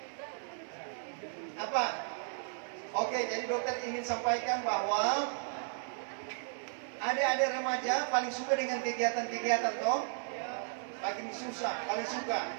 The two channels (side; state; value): left; silent; 55 dB below the other